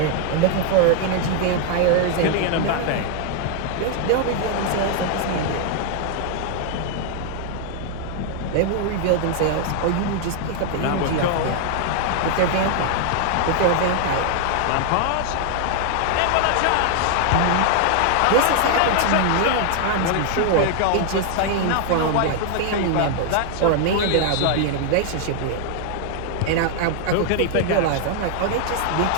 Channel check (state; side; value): different; both; correlation 0.00